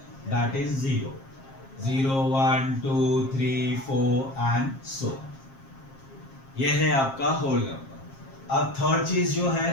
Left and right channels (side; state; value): right; late; 7.5 ms